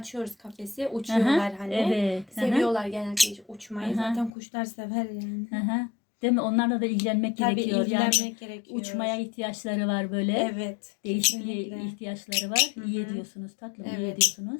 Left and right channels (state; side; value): drops out; right; at 4.3 s